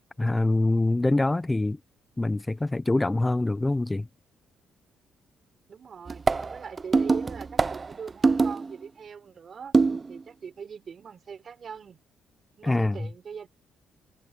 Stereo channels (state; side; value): normal; both; correlation 0.95